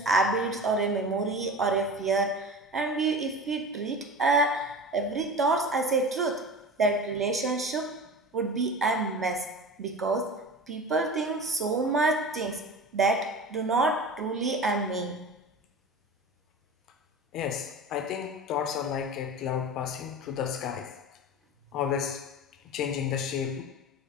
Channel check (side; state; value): both; normal; correlation 0.33